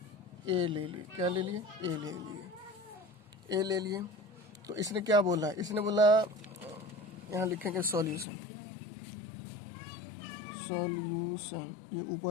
ए ले लिए, क्या ले लिए, ए ले लिए, ए ले लिए। तो इसने क्या बोला, इसने बोला यहाँ लिखेंगे सॉल्यूशन, सॉल्यूशन, ये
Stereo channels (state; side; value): drops out; right; at 8.2 s